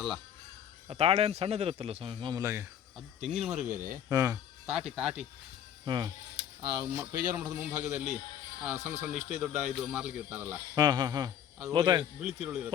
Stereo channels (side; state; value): right; quieter; 9.6 dB